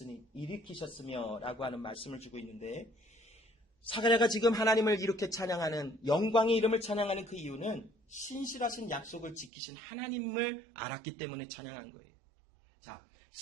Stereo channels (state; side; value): drops out; left; at 9.5 s